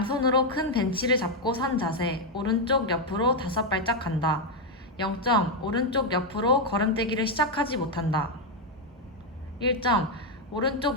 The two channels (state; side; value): normal; both; correlation 0.03